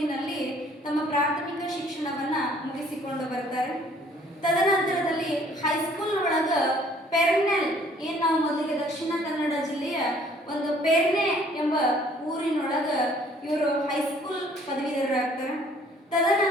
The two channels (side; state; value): both; normal; correlation 0.58